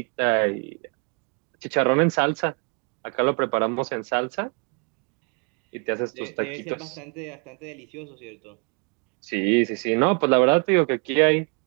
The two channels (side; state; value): left; quieter; 36.4 dB